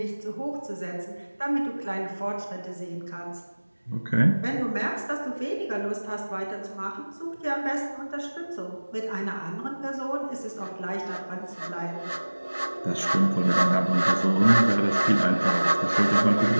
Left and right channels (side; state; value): both; inverted; correlation -1.00